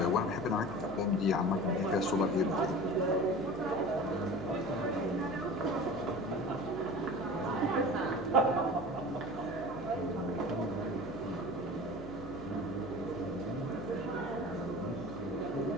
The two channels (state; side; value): noise; left; hum, 13 dB below the sound